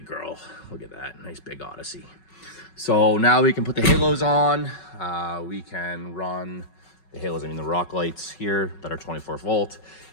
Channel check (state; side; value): late; right; 5.4 ms